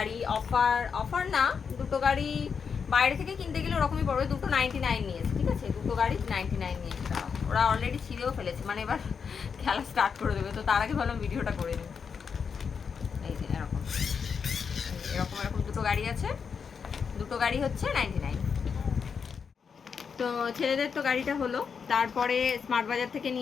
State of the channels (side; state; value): right; quieter; 6.2 dB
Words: অফার না, দুটো গাড়ি বাইরে থেকে কিনতে গেলে ওরকমই পড়বে। দুটো 99 নিয়েছে, ঠিক আছে, দুটো গাড়ি 99 নিয়েছে। ওরা অলরেডি ছিঁড়েও ফেলেছে, মানে এবার খেলা স্টার্ট করে দেবে। তো তার আগে ভাবলাম ভিডিওটা করে নিই। এই যে এরকম এরকম এরকম দুটো গাড়ি আছে, দুটো গাড়ি হচ্ছে 99। তো ছেলেদের তো গাড়িটা হলো। তারপরে স্মার্ট বাজার থেকে